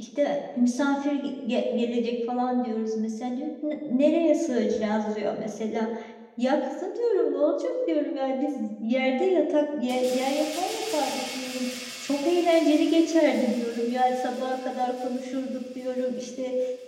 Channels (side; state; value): both; identical; correlation 1.00